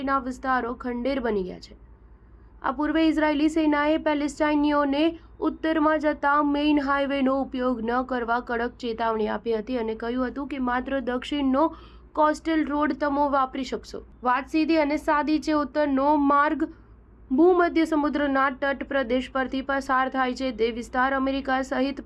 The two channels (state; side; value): identical; both; correlation 1.00